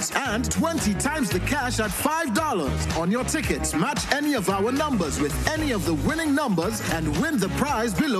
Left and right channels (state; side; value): identical; both; correlation 1.00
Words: and 20 times the cash at $5. On your tickets, match any of our numbers with any of the winning numbers and win the prize